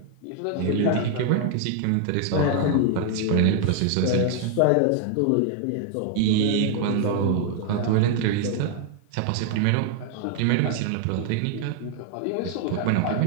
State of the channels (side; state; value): both; different; correlation 0.00